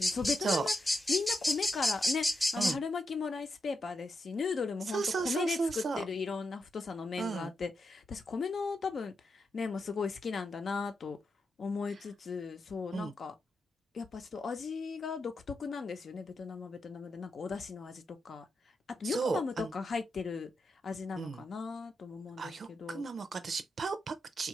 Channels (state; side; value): normal; both; correlation 0.86